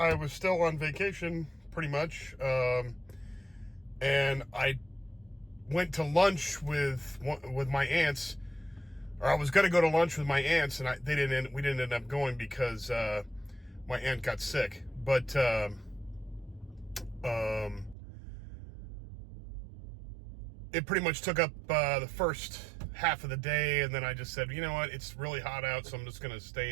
was still on vacation, pretty much, and I went to lunch with my aunts, or I was going to go to lunch with my aunts, and we didn't end up going because my aunt got sick. But it pretty much took up the first half of the day, and then I just said, you know what, it's really hot out, so I'm just gonna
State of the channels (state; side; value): drops out; left; at 17.9 s